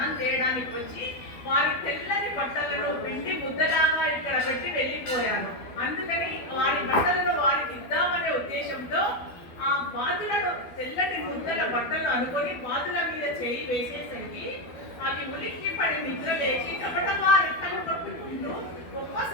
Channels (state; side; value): late; right; 12 ms